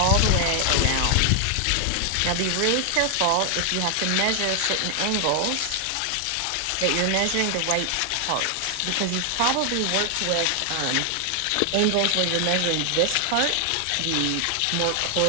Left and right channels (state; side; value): different; both; correlation 0.00